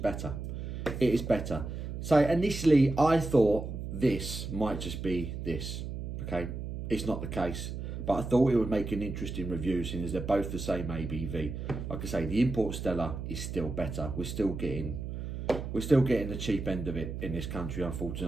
It is better. So initially, I thought this might just be this, okay? It's not the case, but I thought it would make an interesting review, seeing as they're both the same ABV. Like I say, the import Stella is still better. We're still getting the cheap end of it in this country,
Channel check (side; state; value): right; noise; hum, 6 dB below the sound